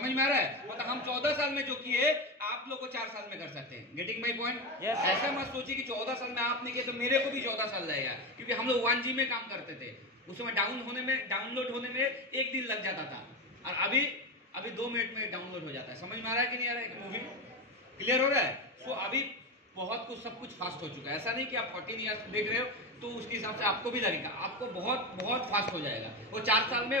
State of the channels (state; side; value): normal; both; correlation 0.17